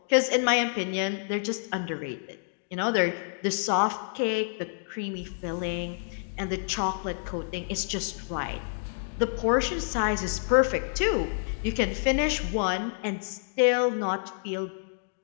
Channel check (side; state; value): right; silent; digital silence